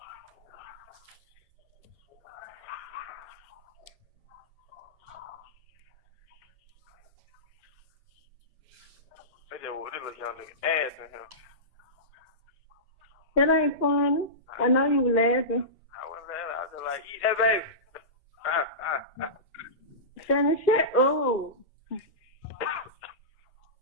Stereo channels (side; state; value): both; normal; correlation -0.19